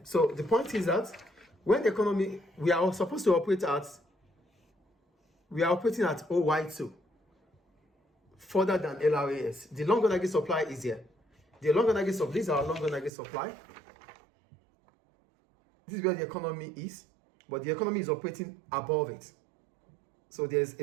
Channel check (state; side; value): drops out; left; at 13.1 s